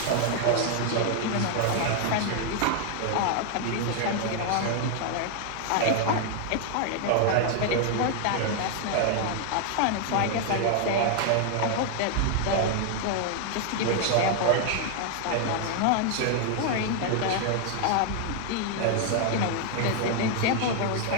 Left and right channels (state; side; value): different; both; correlation 0.00